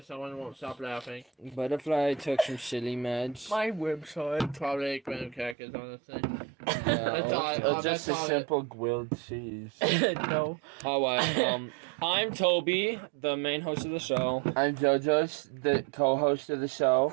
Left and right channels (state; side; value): drops out; left; at 5.6 s